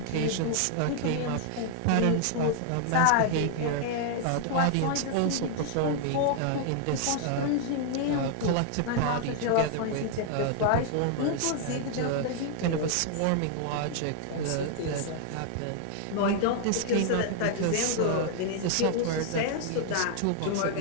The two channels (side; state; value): both; different; correlation 0.00